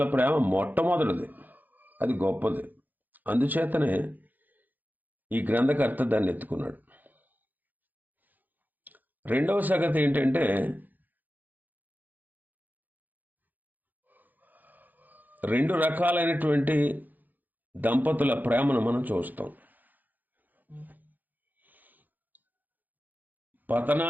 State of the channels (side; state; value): left; late; 0.084 ms